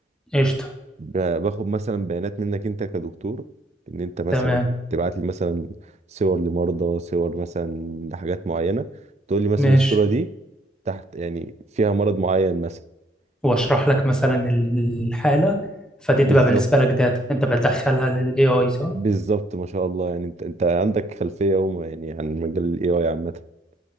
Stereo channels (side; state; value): both; normal; correlation 0.68